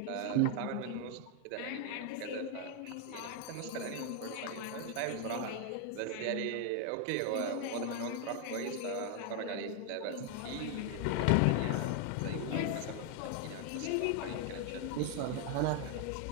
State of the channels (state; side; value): different; both; correlation 0.01